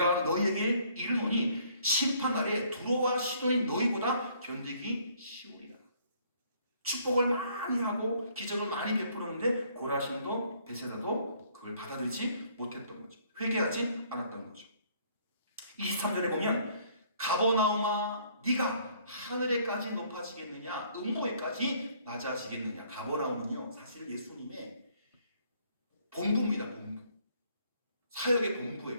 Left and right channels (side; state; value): both; inverted; correlation -0.63